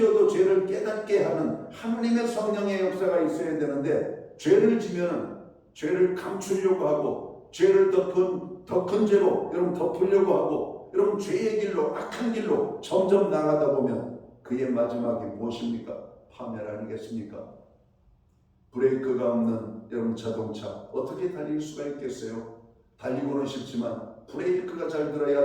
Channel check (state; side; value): identical; both; correlation 1.00